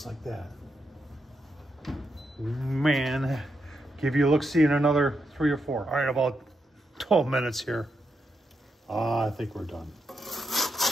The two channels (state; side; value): normal; both; correlation 0.83